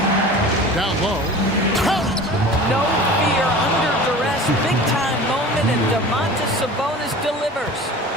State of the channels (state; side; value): normal; both; correlation 0.39